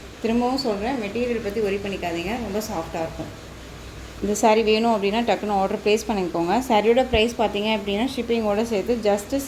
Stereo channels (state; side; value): identical; both; correlation 1.00